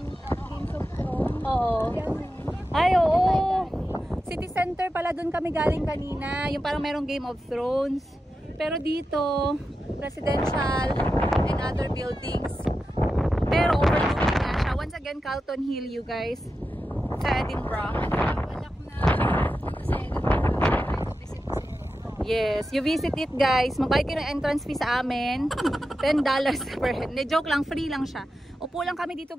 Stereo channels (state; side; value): normal; both; correlation 0.91